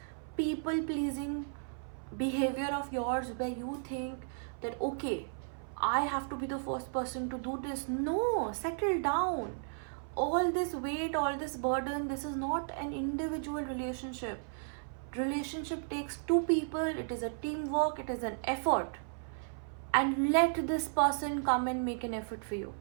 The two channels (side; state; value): left; silent; 55 dB below the other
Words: people pleasing behavior of yours where you think that, okay, I have to be the first person to do this. No, settle down. All this weight, all this burden, this is not an individual relationship. Relationship takes two people. It is a teamwork. It is an effort. And let this person come and make an effort for you.